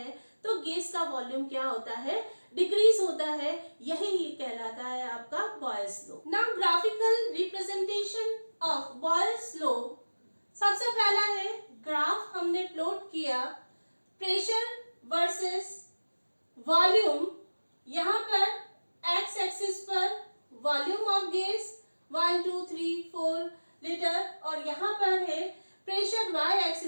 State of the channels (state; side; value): inverted; both; correlation -1.00